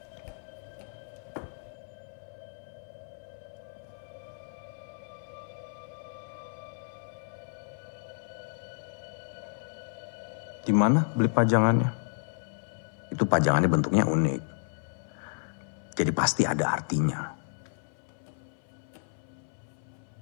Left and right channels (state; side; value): silent; right; 57 dB below the other